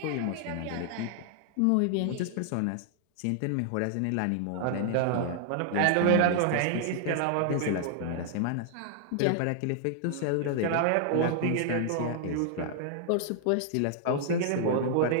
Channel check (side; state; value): both; different; correlation 0.00